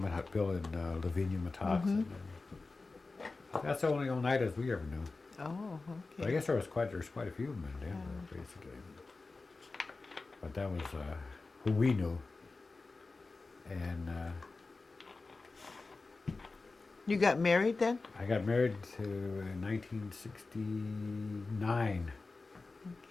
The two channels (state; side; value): quieter; right; 3.7 dB